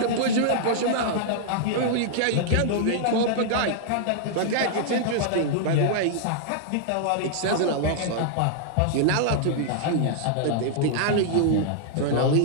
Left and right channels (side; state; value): both; different; correlation -0.01